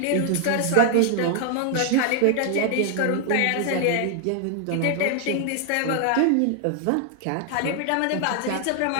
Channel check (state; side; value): different; both; correlation 0.00